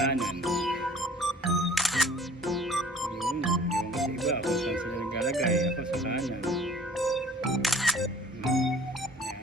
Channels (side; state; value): both; normal; correlation 0.50